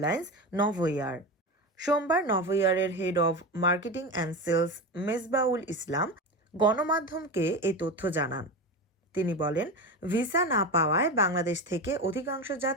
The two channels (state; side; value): normal; both; correlation 0.22